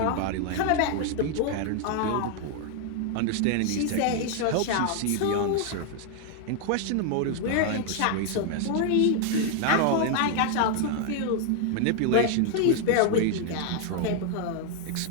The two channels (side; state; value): both; different; correlation 0.00